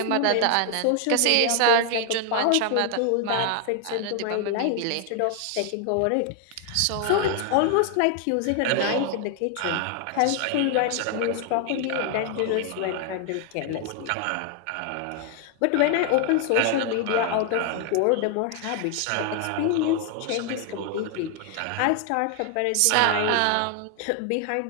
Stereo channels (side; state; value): both; different; correlation 0.00